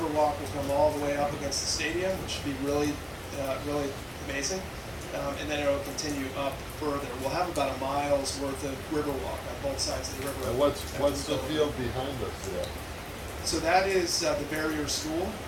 walk will come all the way up against the stadium, which should be really, really amazing. And then it will continue up further. We'll have about a mile's worth of river walk on both sides of the river. And what's the field behind us there? So that is the Barrier School.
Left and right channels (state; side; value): identical; both; correlation 1.00